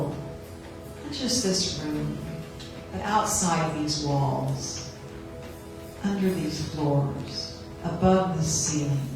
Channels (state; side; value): identical; both; correlation 1.00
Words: not just this room, but outside these walls, under these floors, above the ceiling,